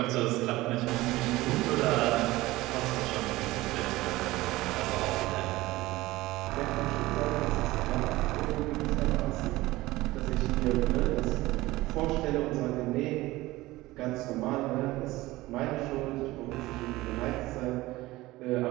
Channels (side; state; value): left; quieter; 18.6 dB